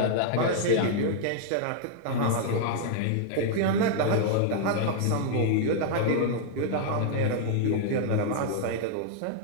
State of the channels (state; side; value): different; both; correlation -0.01